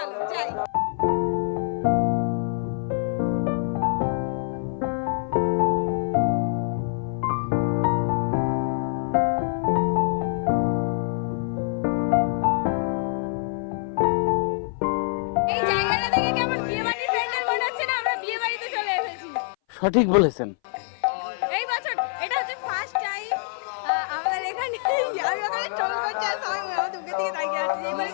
যাই। এই জায়গাটা দেখে কেমন বিয়ে বাড়ির প্যান্ডেল মনে হচ্ছে না? আমরা বিয়ে বাড়িতে চলে এসেছি। সঠিক বলেছেন। এই বছর এটা হচ্ছে ফার্স্ট টাইম আমাদের এখানে। আমি ওখানে টোল করছি আর সবাই আমার দুঃখের দিকে তাকিয়ে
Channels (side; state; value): right; silent; 60 dB below the other